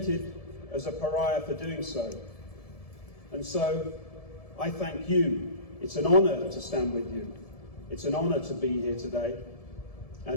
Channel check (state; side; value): late; right; 1.7 ms